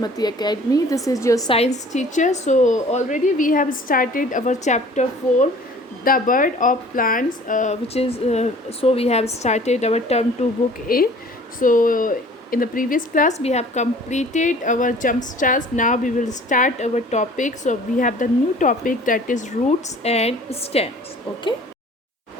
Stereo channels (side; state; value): both; normal; correlation 0.49